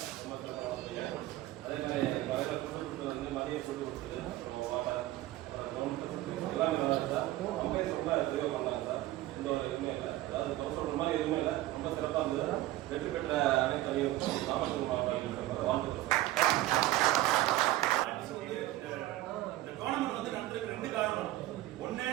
அதே மாதிரி மதிய ஃபுட்டு கொடுத்தது, வாட்டர், எல்லாமே நல்லா இருந்தா அம்பையர் ரொம்ப தெளிவாக பண்ணாங்க சார். எந்த ஒரு இதுவுமே இல்லை, அதாவது குறை சொல்ற மாதிரி எதுவுமே இல்லை, ரொம்ப சிறப்பாக இருந்தது. வெற்றி பெற்ற அனைத்து அணிகளுக்கும் நாமக்கல் மாவட்ட அணிகளுக்கு வாழ்த்துக்கள் சார். இந்த டோர்னமெண்ட் வந்து நடத்துறதுக்கு 2 காரணம். ஒண்ணு,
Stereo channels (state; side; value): quieter; left; 16.0 dB